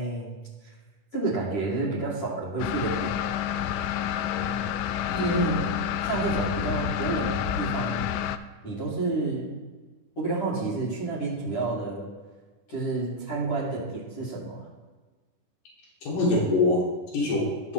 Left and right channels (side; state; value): right; late; 10 ms